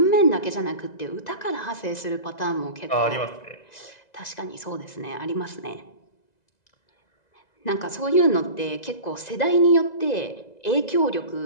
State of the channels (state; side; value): late; right; 2.0 ms